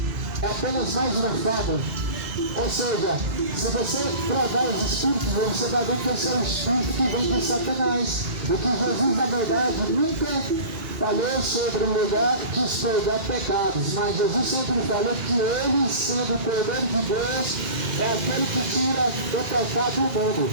é apenas mais uma fábula. Ou seja, se você provar os espíritos, você vai ver que esse é um espírito que vem de Satanás. O que Jesus, na verdade, nunca falou sobre o lugar de expurgar pecados, mas Jesus sempre falou que ele, sendo o Cordeiro de Deus, é aquele que tira o pecado do mundo.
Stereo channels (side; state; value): left; late; 3.3 ms